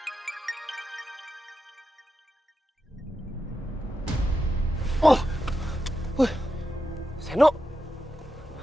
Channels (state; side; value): normal; both; correlation 0.88